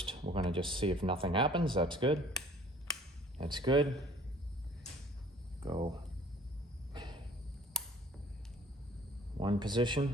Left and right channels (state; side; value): normal; both; correlation 0.53